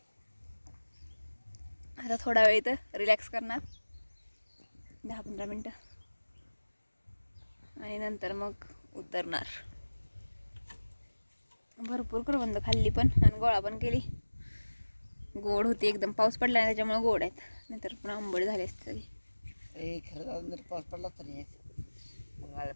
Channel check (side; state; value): both; inverted; correlation -1.00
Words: आता थोडा वेळ इथं रिलॅक्स करणार 10-15 मिनटं आणि नंतर मग उतरणार. भरपूर करवंद खाल्ली पण आणि गोळा पण केली. गोड होती एकदम. पाऊस पडला नाही त्याच्यामुळे गोड आहेत, नाहीतर पण आंबट झाले असते सगळी. खरं जर पाऊस पडला तरी मग आळे